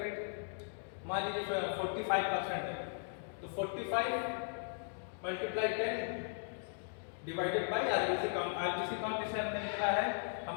मान लीजिए 45% है, तो 45 multiply 10 divided by RBC count. RBC count जैसे हमने लिखा है,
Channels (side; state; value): right; silent; digital silence